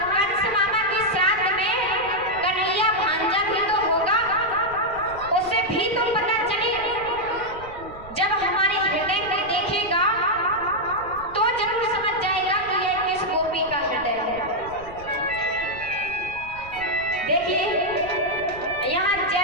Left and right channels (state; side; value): noise; right; rumble, 18 dB below the sound